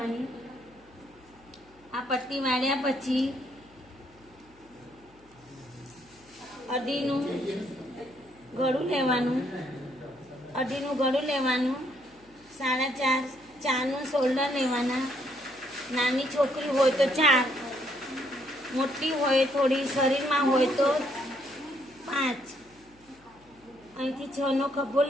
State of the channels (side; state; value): left; noise; hum, 29 dB below the sound